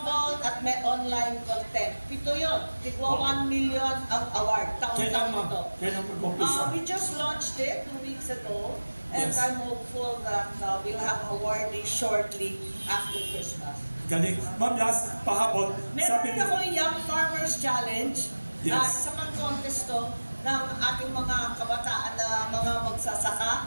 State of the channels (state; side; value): inverted; both; correlation -1.00